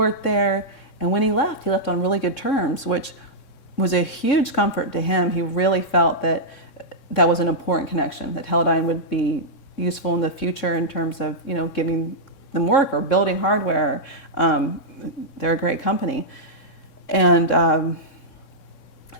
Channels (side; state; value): right; late; 3.6 ms